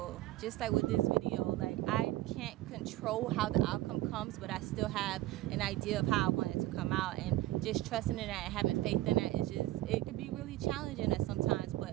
Just like with this video, like I can't control how the outcome comes, but I still have an idea of how I want it to come out, and just trusting in that and having faith in that is just, it could be really challenging at sometimes.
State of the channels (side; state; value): left; quieter; 16.2 dB